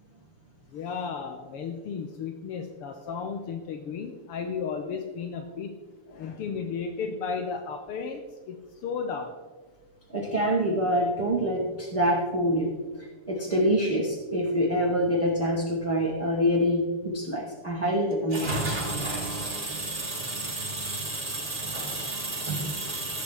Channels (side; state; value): right; late; 7.0 ms